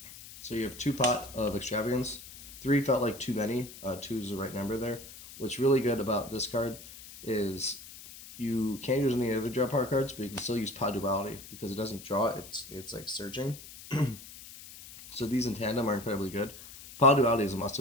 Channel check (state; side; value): noise; left; hiss, 16 dB below the sound